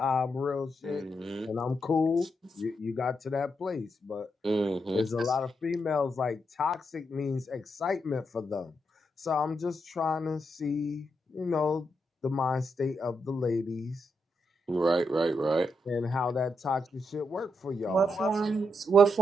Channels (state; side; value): normal; both; correlation 0.82